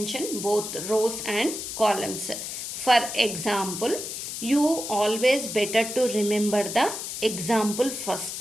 both rows and columns. For example, you always better to remember the example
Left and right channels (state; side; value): noise; left; hiss, 6 dB below the sound